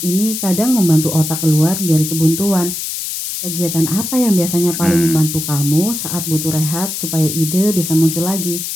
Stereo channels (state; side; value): noise; left; hiss, 5 dB below the sound